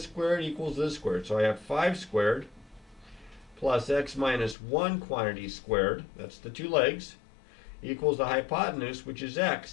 squared equals this squared. So I have 5 squared plus x minus 1 quantity squared, that's the 2 legs, equals the hypotenuse, which is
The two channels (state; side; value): drops out; right; at 4.5 s